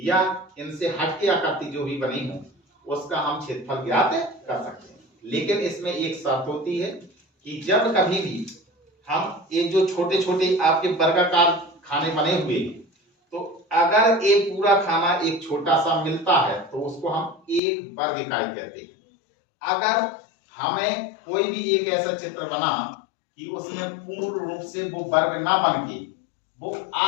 या इनसे हटके आकृति जो भी बनी हो उसका हम क्षेत्रफल ज्ञात कर सकते हैं। लेकिन इसमें एक शर्त होती है कि जब कभी भी हम ये जो छोटे छोटे आपके वर्गाकार खाने बने हुए तो अगर ये पूरा खाना एक छोटा सा मिलता है तो उसको हम एक वर्ग इकाई कहते हैं। अगर हमें कोई भी एक ऐसा चित्र बना कि उसमें पूर्ण रूप से वो वर्ग ना बन के वो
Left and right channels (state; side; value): drops out; right; at 17.6 s